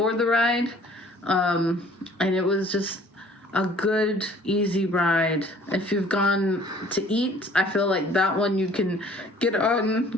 the ride. And it was just a good, easy ride. If you've gone to eat, I feel like that one you can get on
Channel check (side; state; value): both; normal; correlation 0.53